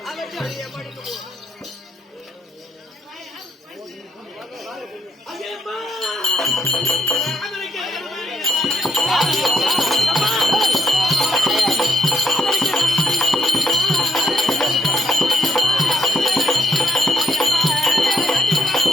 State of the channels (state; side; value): normal; both; correlation 0.73